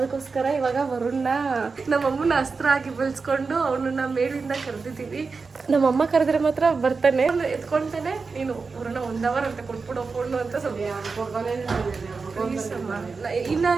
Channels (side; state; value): left; quieter; 4.6 dB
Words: ಇವಾಗ ವರುಣ್ನ ನಮ್ಮಮ್ಮನ ಅಸ್ತ್ರ ಆಗಿ ಬೆಳೆಸ್ಕೊಂಡು ಅವನನ್ನ ಮೇಲಿಂದ ಕರೆದಿದ್ದೀವಿ. ನಮ್ಮಮ್ಮ ಕರೆದ್ರೆ ಮಾತ್ರ ಬರ್ತಾನೆ, ಎತ್ಕೊಳ್ತಾನೆ. ನೀನು ವರುಣ 1 hour ಅಂತ ಕೊಟ್ಬಿಡೋ ಫೋನು ಅಂತ ಸ್ವಲ್ಪ